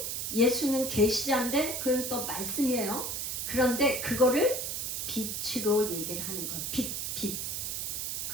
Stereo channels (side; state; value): right; noise; hiss, 3 dB below the sound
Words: 계시자인데 그건 또 말씀이에요. 그런데 그거를 빛으로 얘기를 하는 거예요. 빛.